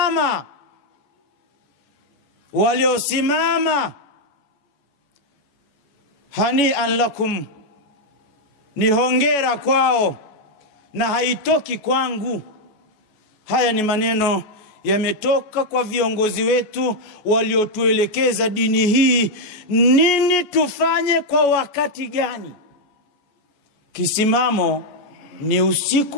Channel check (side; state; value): right; late; 14 ms